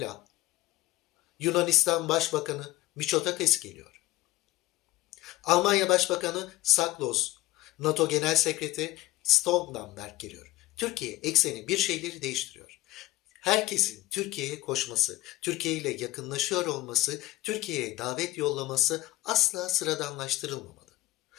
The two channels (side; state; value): right; quieter; 18.4 dB